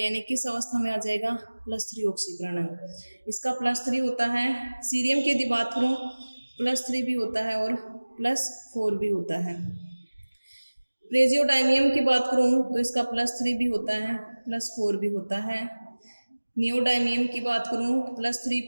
किस अवस्था में आ जाएगा, +3 ऑक्सीकरण अंक। इसका +3 होता है। सीरियम की यदि बात करूँ +3 भी होता है और +4 भी होता है। प्रेजियोडाइमियम की बात करूँ तो इसका +3 भी होता है, +4 भी होता है। नियोडाइमियम की बात करूँ तो +3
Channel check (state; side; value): inverted; both; correlation -1.00